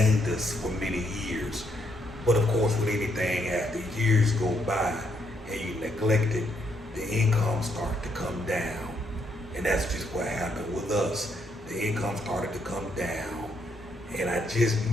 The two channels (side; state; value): both; normal; correlation 0.74